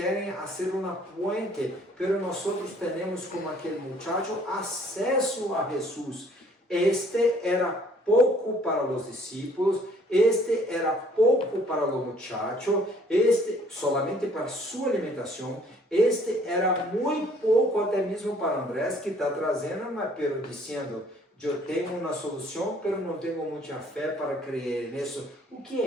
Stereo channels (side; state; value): both; normal; correlation 0.59